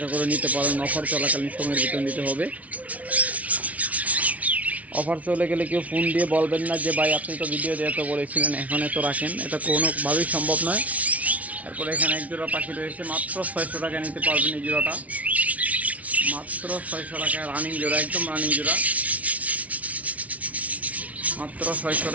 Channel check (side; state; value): left; late; 0.068 ms